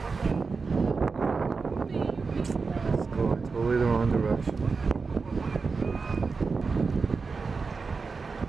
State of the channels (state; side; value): quieter; left; 4.6 dB